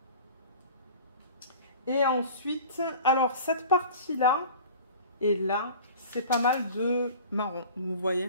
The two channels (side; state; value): both; inverted; correlation -0.41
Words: Et ensuite, alors cette partie-là et là, c'est pas mal de marron, vous